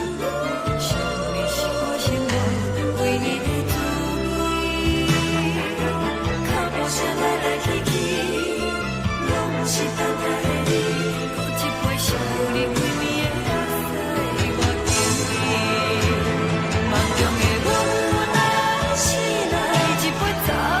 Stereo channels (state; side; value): identical; both; correlation 1.00